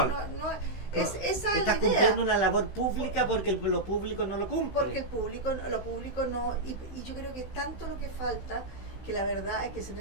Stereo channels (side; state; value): right; late; 15 ms